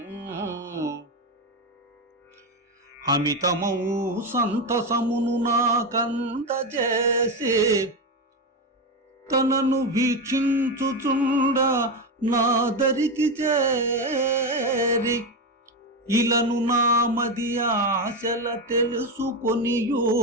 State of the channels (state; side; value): normal; both; correlation 0.13